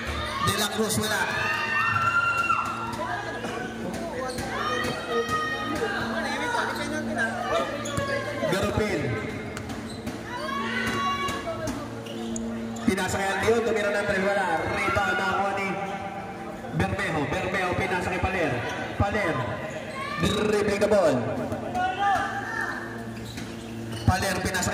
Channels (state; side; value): identical; both; correlation 1.00